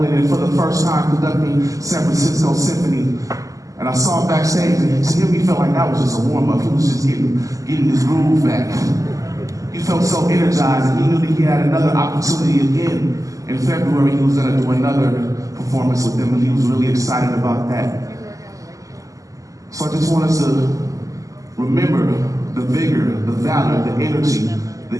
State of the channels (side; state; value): left; late; 0.16 ms